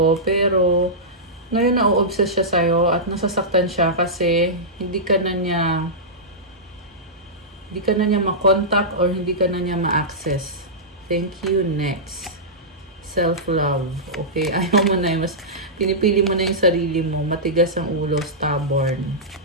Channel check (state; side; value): normal; both; correlation -0.13